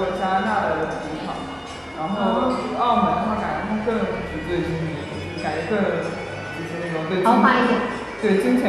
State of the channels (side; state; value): both; identical; correlation 1.00